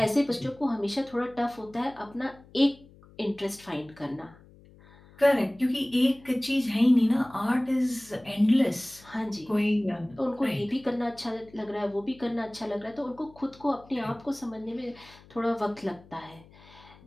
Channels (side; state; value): left; noise; hum, 24 dB below the sound